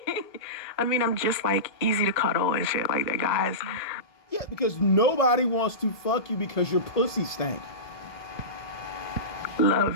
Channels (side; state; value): right; late; 1.8 ms